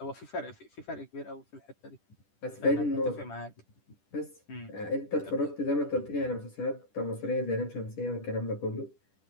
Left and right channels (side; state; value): right; late; 10 ms